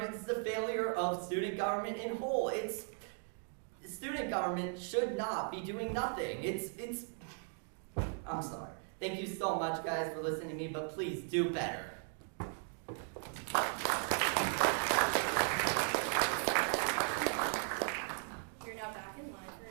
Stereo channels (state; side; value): silent; left; 53 dB below the other